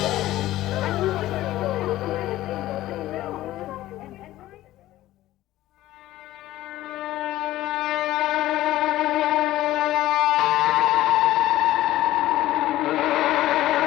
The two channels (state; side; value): quieter; right; 15.2 dB